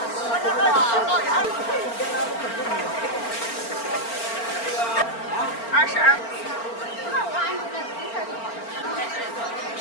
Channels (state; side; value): late; right; 4.4 ms